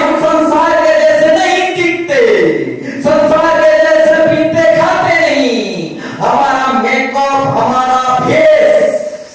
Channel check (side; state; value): both; identical; correlation 1.00